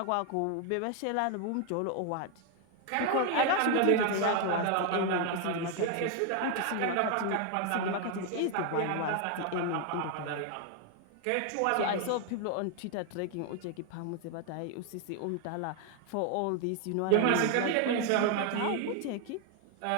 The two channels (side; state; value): both; different; correlation 0.01